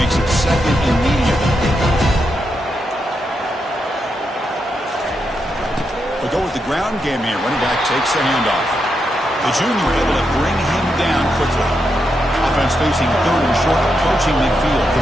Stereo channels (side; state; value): both; normal; correlation 0.84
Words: it second and medium. We go with the ground game here. Running back takes the handoff. The junior able to bring him down quickly. Offense facing third and short, approaching midfield.